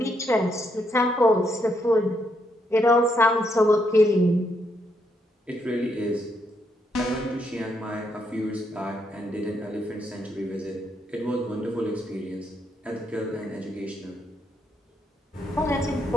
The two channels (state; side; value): normal; both; correlation 0.77